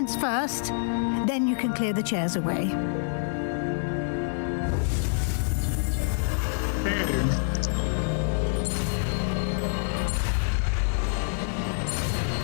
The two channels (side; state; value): right; silent; 60 dB below the other